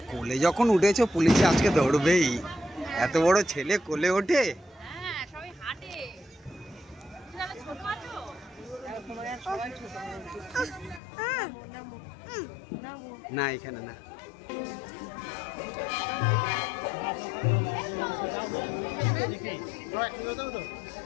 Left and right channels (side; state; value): right; drops out; at 11.0 s